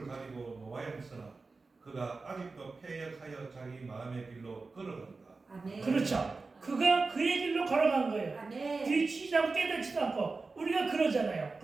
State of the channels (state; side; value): quieter; left; 4.0 dB